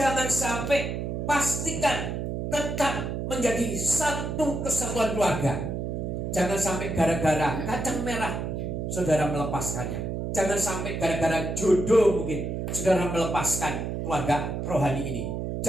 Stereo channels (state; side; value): noise; right; hum, 3 dB below the sound